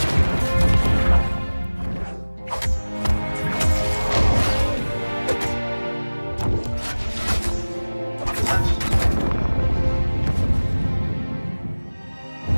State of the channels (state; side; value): inverted; both; correlation -1.00